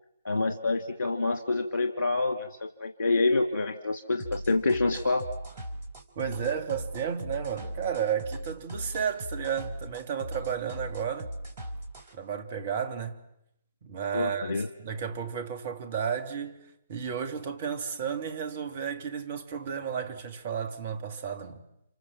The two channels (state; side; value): inverted; both; correlation -0.69